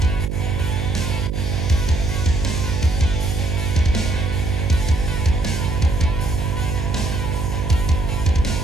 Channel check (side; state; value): right; noise; hum, 3 dB below the sound